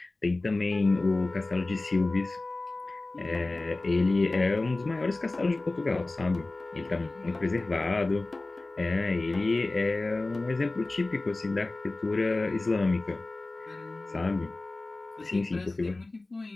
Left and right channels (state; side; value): quieter; right; 3.1 dB